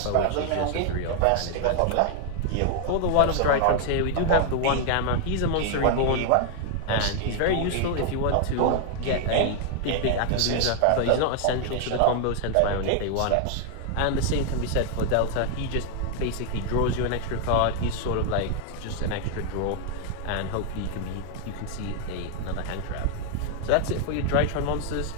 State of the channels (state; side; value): different; both; correlation 0.00